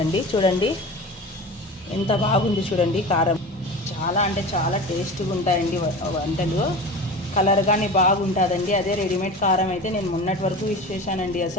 చూడండి ఎంత బాగుంది. చూడండి కారం చాలా అంటే చాలా టేస్ట్గా ఉంటాయండి వంటలు. కలర్ కానీ బాగుంటుందండి. అదే రెడీమేడ్ కారం అయితే నేను మొన్నటి వరకు యూజ్ చేశానండి.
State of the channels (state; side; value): normal; both; correlation 0.32